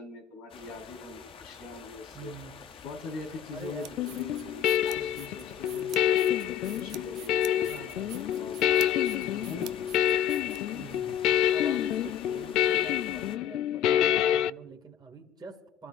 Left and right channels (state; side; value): quieter; right; 10.0 dB